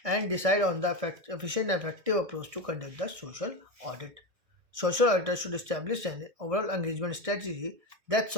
and decide on the efficient and effective approach to conduct the social audit. Social auditors should establish an overall engagement strategy that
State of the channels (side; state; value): left; late; 1.6 ms